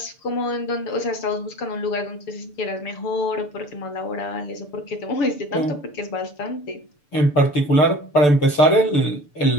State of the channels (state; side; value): late; right; 6.8 ms